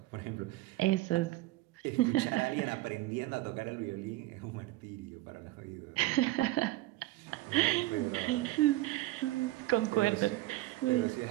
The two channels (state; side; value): quieter; left; 17.9 dB